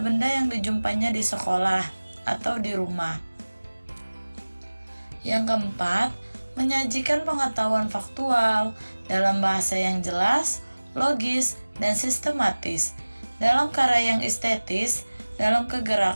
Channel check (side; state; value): both; inverted; correlation -1.00